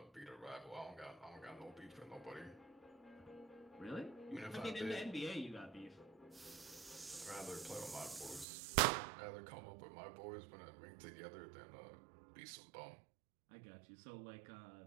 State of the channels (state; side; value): drops out; left; at 8.5 s